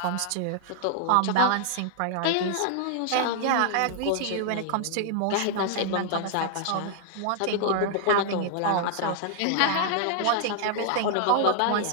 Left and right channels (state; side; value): different; both; correlation 0.00